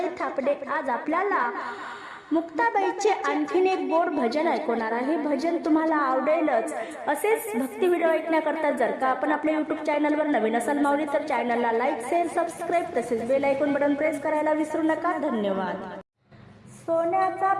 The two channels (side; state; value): both; identical; correlation 1.00